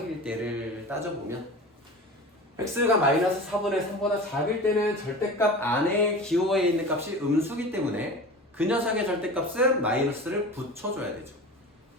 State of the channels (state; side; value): normal; both; correlation 0.34